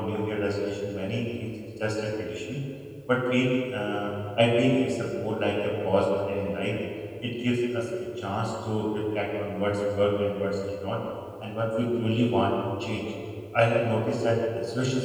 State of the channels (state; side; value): identical; both; correlation 1.00